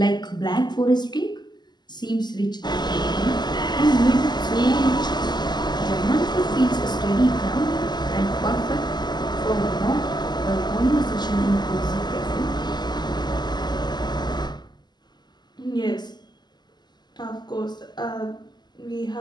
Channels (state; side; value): late; right; 0.21 ms